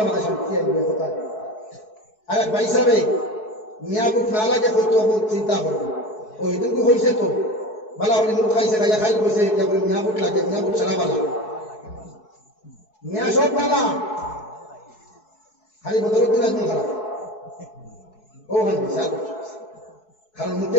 আমাদের শান্তি আসবে কোথায়। আর এক ভাই সাহেব মিয়াবুক না লাগে হয়তো চিন্তা করবো, ও এদিনকে হয়েছে তো বালা হলে মুখ খাইছে, খাইয়া খাইল হয়েছে, মিয়াবুক লাগে, মিয়াবুক ছাড়া বালা, মিয়া সব বালা, খালি বদলতে একদম খারাপ। ও ভাই বিশাল, কারণ মুখে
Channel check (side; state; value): right; late; 4.7 ms